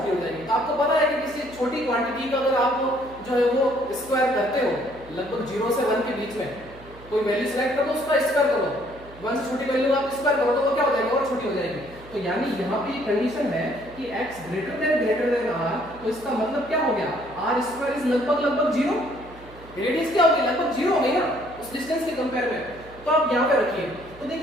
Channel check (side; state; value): right; noise; hum, 20 dB below the sound